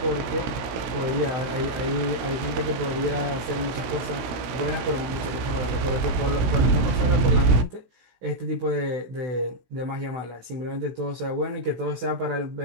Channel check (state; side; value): late; left; 16 ms